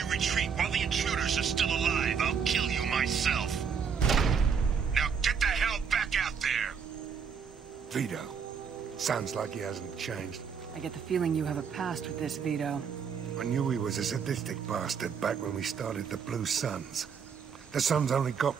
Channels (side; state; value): left; quieter; 6.6 dB